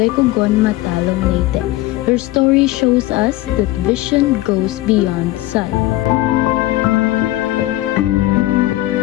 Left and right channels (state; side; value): quieter; right; 17.1 dB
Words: Cogon, Matalom, Leyte. Her story shows us that vision goes beyond sight.